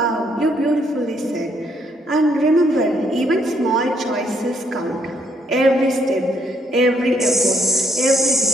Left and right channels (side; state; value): both; normal; correlation 0.72